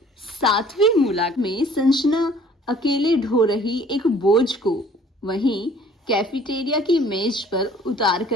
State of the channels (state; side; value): normal; both; correlation 0.54